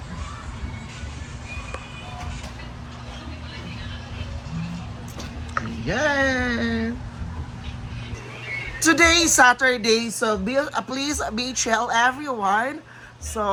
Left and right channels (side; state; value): both; identical; correlation 1.00